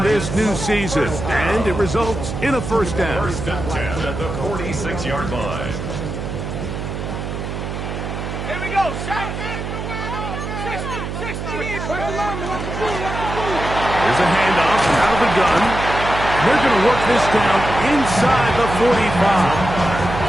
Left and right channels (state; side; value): noise; right; hum, 6 dB below the sound